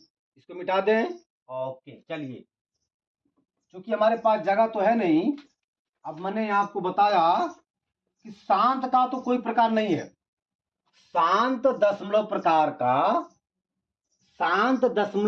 इसको मिटा दें। ओके चलिए, क्योंकि हमारे पास जगह तो है नहीं, अब मैंने आपको बताया कि शांत का तो कोई प्रकार नहीं है। शांत दशमलव प्रकार का, शांत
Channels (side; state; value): both; identical; correlation 1.00